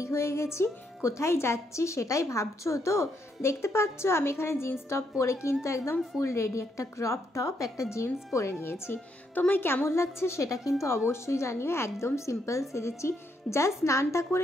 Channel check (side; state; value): both; normal; correlation 0.76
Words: হয়ে গেছি। কোথায় যাচ্ছি সেটাই ভাবছো তো? দেখতে পাচ্ছ আমি এখানে জিন্স টপ পরে কিন্তু একদম ফুল রেডি, একটা ক্রপ টপ একটা জিন্স পরে নিয়েছি। তোমায় কেমন লাগছে সেটা কিন্তু অবশ্যই জানিও। একদম সিম্পল সেজেছি, জাস্ট স্নানটা